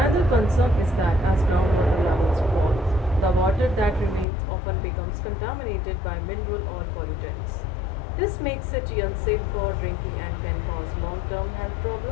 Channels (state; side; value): drops out; right; at 4.2 s